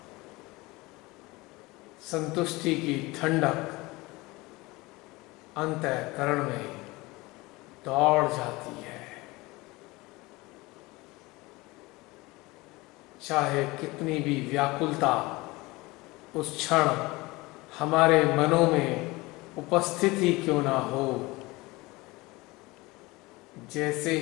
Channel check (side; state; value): right; quieter; 22.1 dB